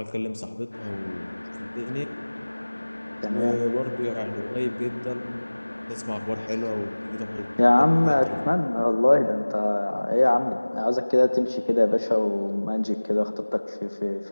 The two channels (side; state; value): both; inverted; correlation -1.00